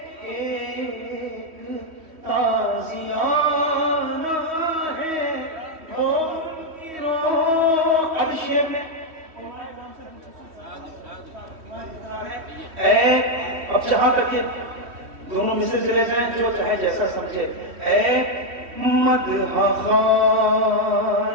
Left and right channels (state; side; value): late; left; 3.1 ms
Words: ایک تازیانہ ہے. وہ ان کی روح. اب شعر میں اب جہاں تک یہ دونوں مثل چلے جائیں جو چاہے جیسا سمجھے. اے مدح